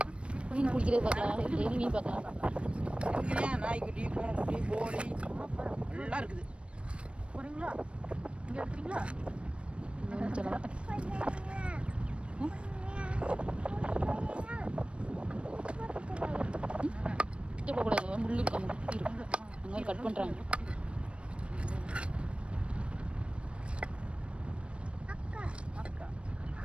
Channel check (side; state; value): left; late; 0.059 ms